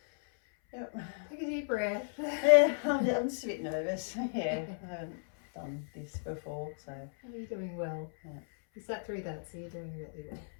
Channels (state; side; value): silent; right; 55 dB below the other